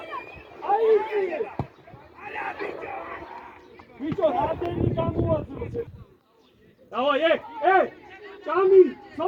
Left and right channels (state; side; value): identical; both; correlation 1.00